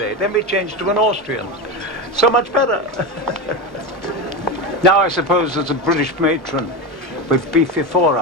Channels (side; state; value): both; normal; correlation 0.19